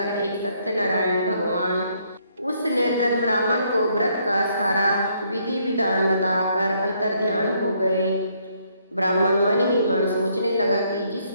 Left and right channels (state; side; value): inverted; both; correlation -0.70